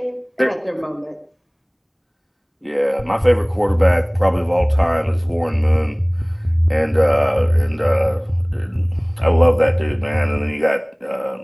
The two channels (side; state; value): both; identical; correlation 1.00